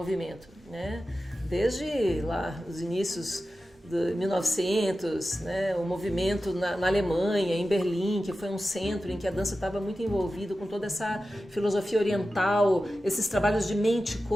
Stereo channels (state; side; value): normal; both; correlation 0.93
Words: né? Desde lá os inícios de 1900, né? O movimento na Alemanha, em Berlim, que foi um centro em que a dança estava muito envolvida com toda essa filosofia oriental, esses trabalhos de mente,